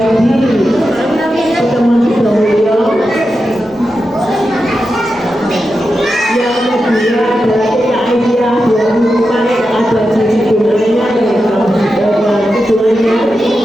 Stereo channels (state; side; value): normal; both; correlation 0.90